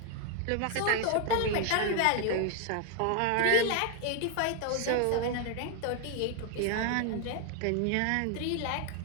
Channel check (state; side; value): different; both; correlation 0.00